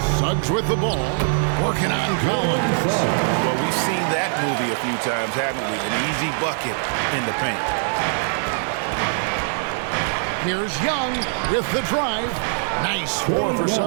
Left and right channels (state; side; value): silent; left; 58 dB below the other